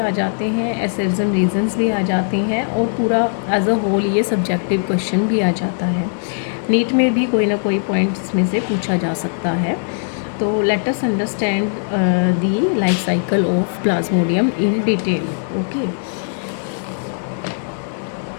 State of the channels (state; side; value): silent; right; digital silence